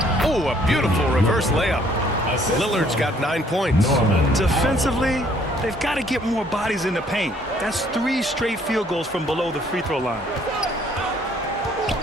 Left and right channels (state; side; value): normal; both; correlation 0.62